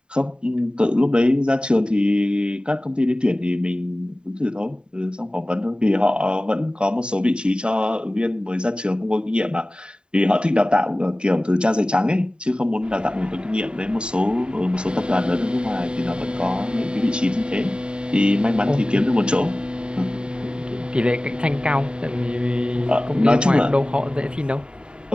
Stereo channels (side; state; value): left; late; 0.050 ms